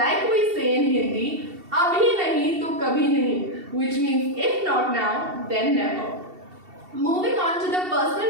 we say in Hindi, abhi nahi to kabhi nahi, which means if not now, then never. Moving on to the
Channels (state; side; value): late; left; 2.7 ms